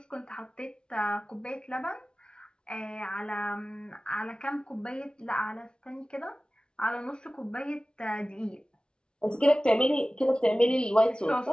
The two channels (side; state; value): right; late; 0.055 ms